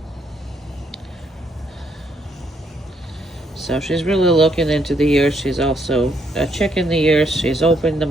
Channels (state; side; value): normal; both; correlation 0.73